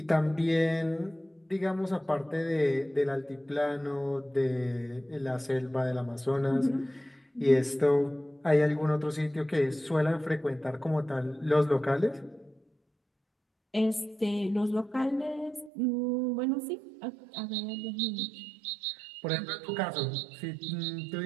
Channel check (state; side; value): drops out; left; at 15.7 s